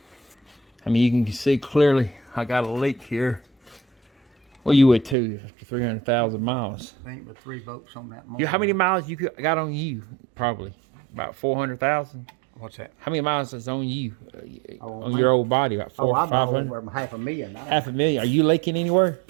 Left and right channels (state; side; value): drops out; left; at 5.2 s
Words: I mean, you can see clearly I got a leak here. Well, you would too, after 300,000 miles. Ain't but 3 bolts on that motor. How many miles you got on you? Probably about 400,000. What's that? How many miles is on you? Oh, On mine? your old body? About Oh, I'm 500? over $500,000 now. $500,000. Are you leaking anywhere?